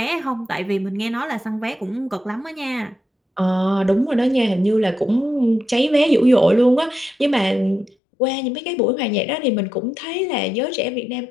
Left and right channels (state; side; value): drops out; right; at 8.0 s